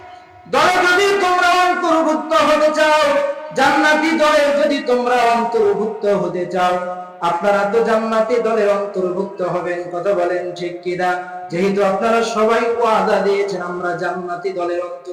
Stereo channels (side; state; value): both; identical; correlation 1.00